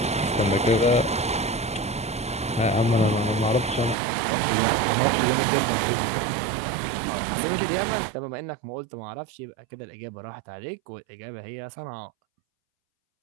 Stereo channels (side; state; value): left; drops out; at 4.0 s